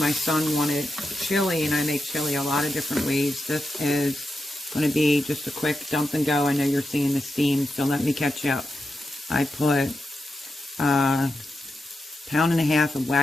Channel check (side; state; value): both; normal; correlation 0.88